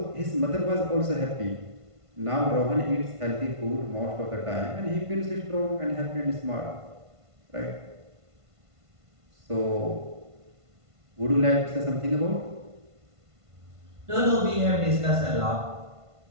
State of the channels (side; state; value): left; late; 1.5 ms